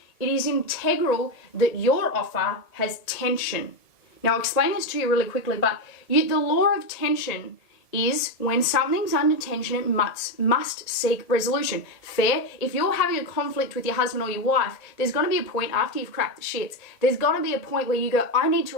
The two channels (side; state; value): right; late; 1.8 ms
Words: it is integral that your offer has tension. Now, I'll explain this to you really quickly, but the law of tension is when something's under tension, it must seek resolution. Fair? If you're having a conflict with your husband or your wife, there's going to be a point after you've cracked the shits, there's going to be a point where you go, I need to